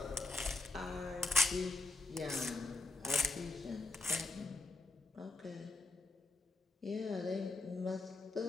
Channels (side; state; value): right; quieter; 3.4 dB